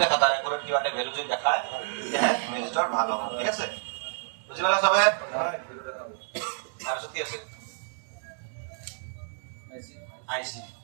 দেখা তাৰ একুৰেট কিবা এটা ভ্যালু যদি দেখায় তেতিয়াহে ৰেজিষ্টাৰ ভাল হ'ব ঠিক আছে বুজি পালা সবে তাৰপিছত কি আছে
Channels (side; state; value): left; silent; digital silence